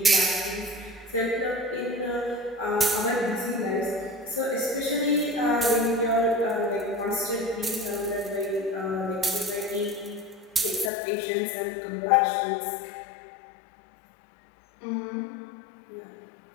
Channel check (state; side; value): drops out; right; at 10.9 s